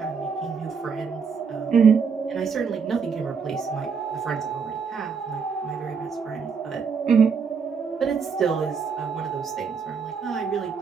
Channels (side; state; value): left; quieter; 5.8 dB